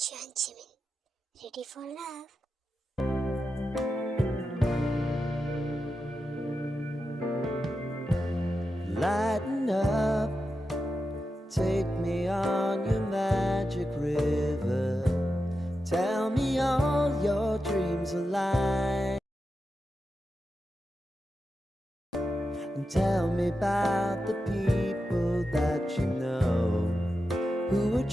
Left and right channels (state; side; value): normal; both; correlation 0.89